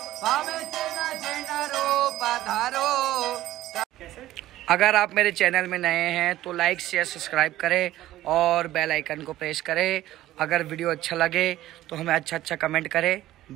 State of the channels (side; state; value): left; quieter; 14.8 dB